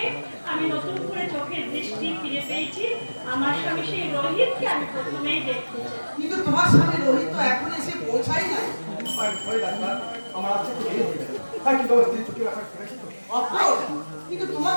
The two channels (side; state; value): both; inverted; correlation -1.00